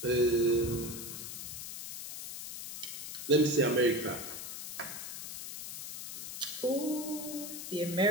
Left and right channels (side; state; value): left; noise; hiss, 8 dB below the sound